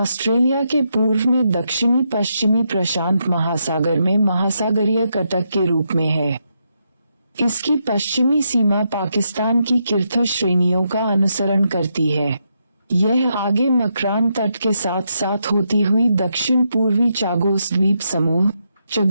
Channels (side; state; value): both; inverted; correlation -0.81